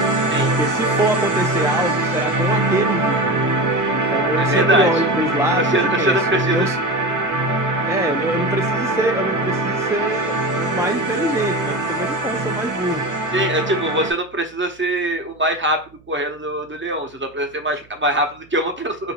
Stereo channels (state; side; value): noise; right; hum, 29 dB below the sound